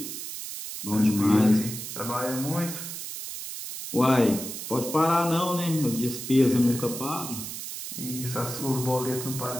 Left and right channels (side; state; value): right; noise; hiss, 8 dB below the sound